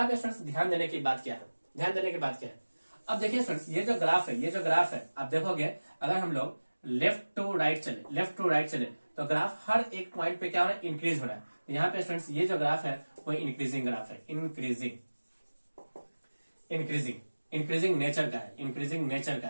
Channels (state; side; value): inverted; both; correlation -1.00